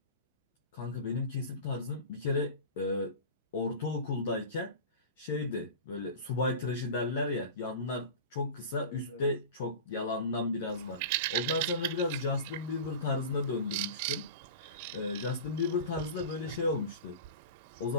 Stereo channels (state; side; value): inverted; both; correlation -0.32